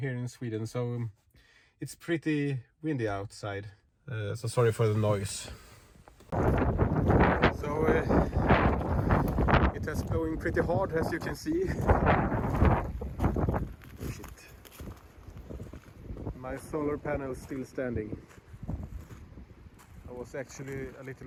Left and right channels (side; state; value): both; identical; correlation 1.00